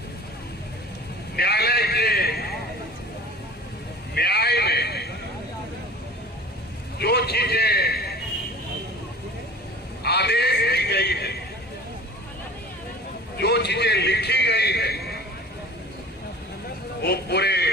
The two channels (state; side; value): normal; both; correlation 0.42